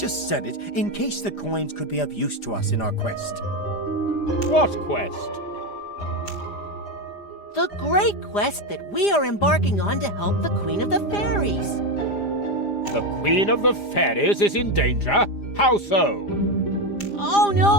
said it in case the coins could be of use to us in our quest. What quest? The great quest that we are embarking on to help the Queen of the Fairies. The Queen of the Fairies is in danger? How so? Oh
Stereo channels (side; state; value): right; late; 4.9 ms